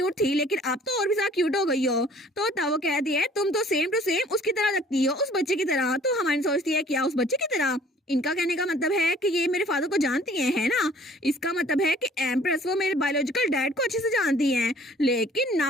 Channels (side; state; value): both; normal; correlation 0.54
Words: थी, लेकिन अब तो और भी ज्यादा क्यूट हो गई हो। तो तब वो कहती है तुम तो सेम टू सेम उसकी तरह लगती हो, उस बच्चे की तरह। तो हमारी सोचती है क्या उस बच्चे की तरह, इनका कहने का मतलब है कि ये मेरे फादर को जानती है ना। इसका मतलब है कि एम्प्रेस वो मेरे बायोलॉजिकल डैड को अच्छे से जानती हैं, लेकिन